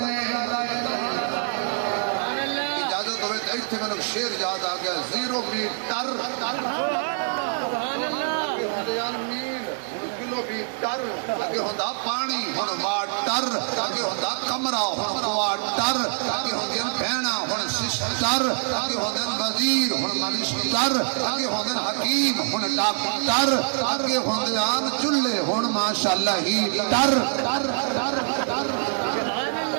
اجازت ہوئے تو ایتھے میں شعر یاد آ گیا زیرو میٹر سبحان اللہ کلو میٹر اگے ہوندا پانی ہن واٹر اگے ہوندا کمرہ ہن کوارٹر اگے ہوندے بہنا ہن سسٹر اگے ہوندے وزیر ہن منسٹر اگے ہوندے حکیم ہن ڈاکٹر اگے ہوندے آن چولہے ہن ماشاءاللہ ہیٹر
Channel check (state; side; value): silent; left; digital silence